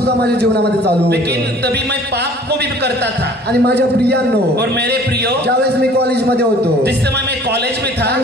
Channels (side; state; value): both; normal; correlation 0.51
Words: माझ्या जीवनामध्ये चालू लेकिन होतं. तभी मैं पाप को भी करता था. आणि माझ्या प्रियांनो, और मेरे प्रियो, ज्यावेळेस मी कॉलेजमध्ये होतो जिस समय मैं कॉलेज में था काही